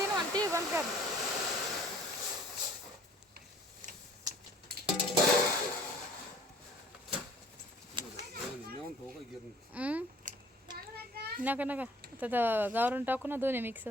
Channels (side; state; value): both; normal; correlation 0.53